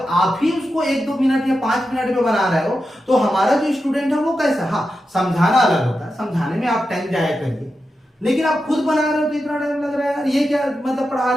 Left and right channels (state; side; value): normal; both; correlation 0.90